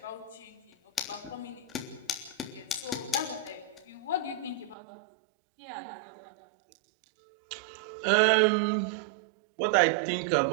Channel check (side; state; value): left; drops out; at 4.8 s